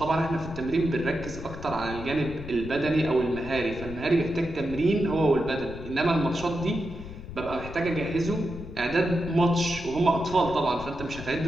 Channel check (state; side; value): noise; left; rumble, 12 dB below the sound